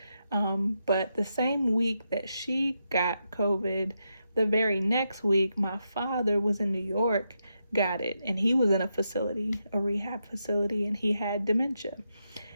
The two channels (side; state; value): both; inverted; correlation -0.84